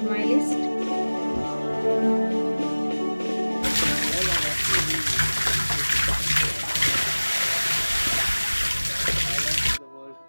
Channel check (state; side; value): inverted; both; correlation -1.00